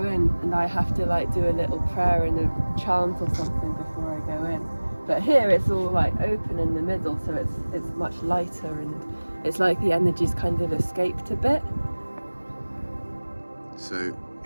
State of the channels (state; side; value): inverted; both; correlation -1.00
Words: in, and I have to like do a little prayer and a chant or something before I go in. But here it's all like open in the middle, so it's much lighter, and it's like the energy's kind of escaped a bit. So